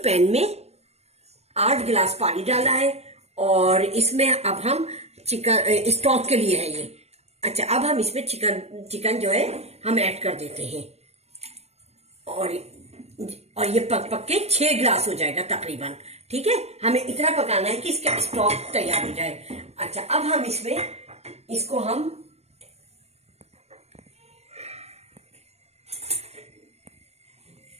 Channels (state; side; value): late; left; 0.31 ms